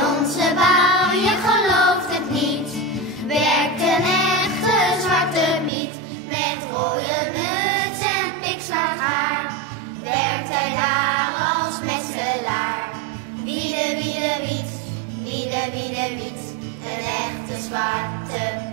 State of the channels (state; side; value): drops out; left; at 5.7 s